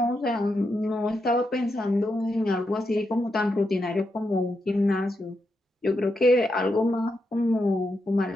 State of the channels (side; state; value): both; normal; correlation 0.84